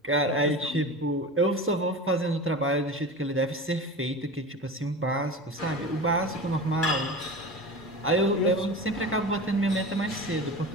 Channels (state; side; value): normal; both; correlation 0.31